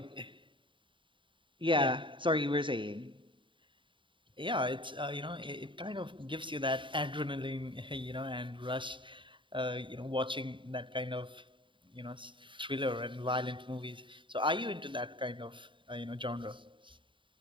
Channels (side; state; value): left; late; 0.24 ms